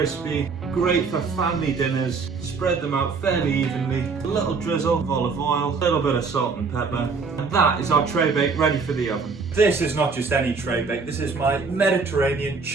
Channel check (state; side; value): quieter; left; 4.8 dB